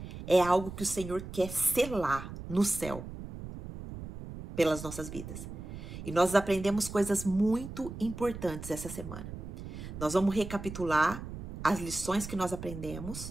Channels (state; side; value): noise; right; rumble, 10 dB below the sound